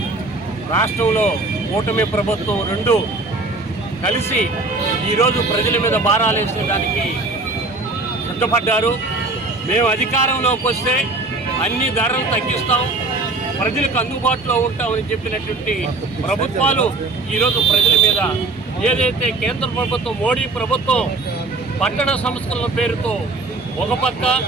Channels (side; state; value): left; quieter; 3.3 dB